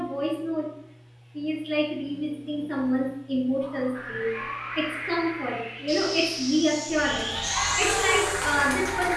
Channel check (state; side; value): identical; both; correlation 1.00